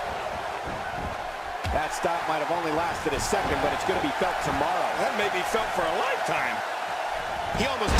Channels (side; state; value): both; identical; correlation 1.00